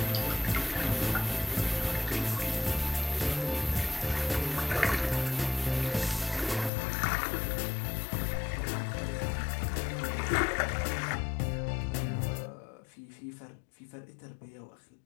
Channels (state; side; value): drops out; right; at 6.7 s